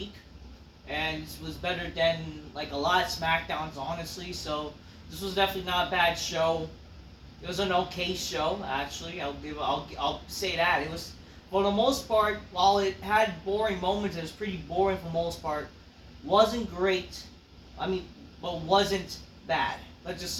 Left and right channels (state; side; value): identical; both; correlation 1.00